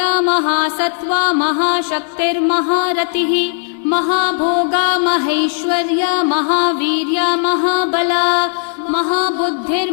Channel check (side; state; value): right; silent; 68 dB below the other